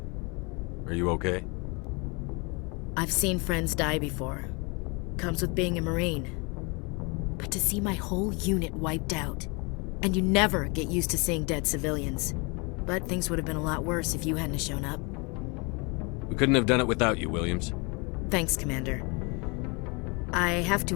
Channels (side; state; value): right; quieter; 30.0 dB